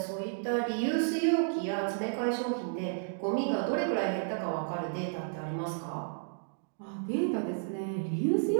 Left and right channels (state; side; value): silent; left; digital silence